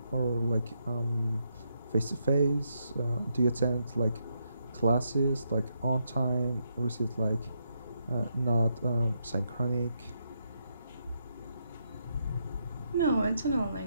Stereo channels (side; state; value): both; inverted; correlation -0.79